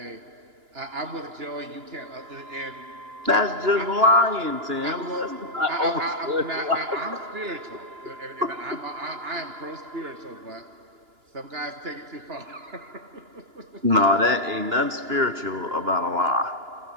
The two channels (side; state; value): left; late; 2.9 ms